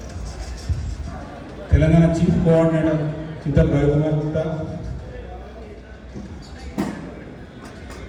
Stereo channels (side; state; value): both; identical; correlation 1.00